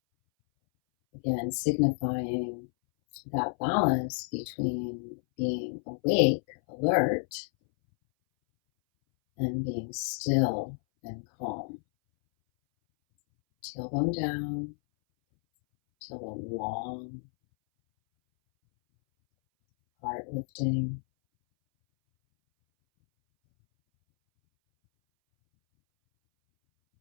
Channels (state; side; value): silent; right; 58 dB below the other